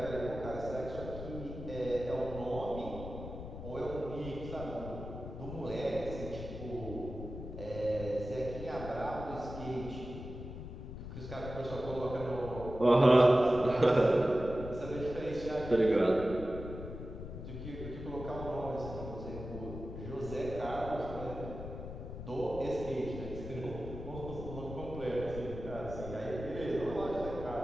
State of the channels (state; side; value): noise; left; rumble, 9 dB below the sound